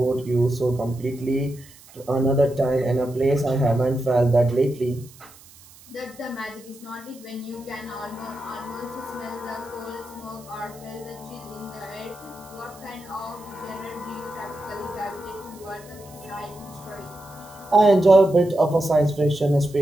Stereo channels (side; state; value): right; noise; hiss, 23 dB below the sound